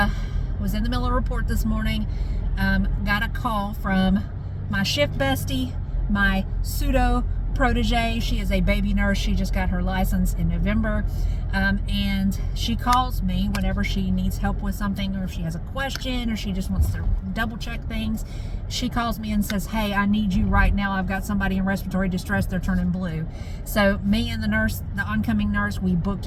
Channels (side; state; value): both; identical; correlation 1.00